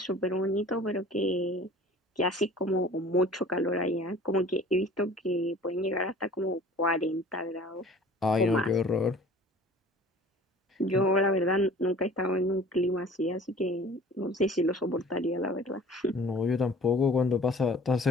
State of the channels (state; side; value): normal; both; correlation 0.47